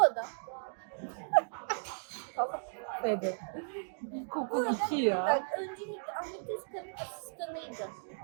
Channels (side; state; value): left; silent; digital silence